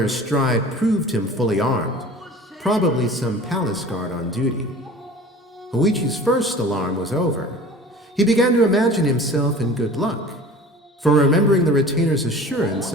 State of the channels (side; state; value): both; normal; correlation 0.42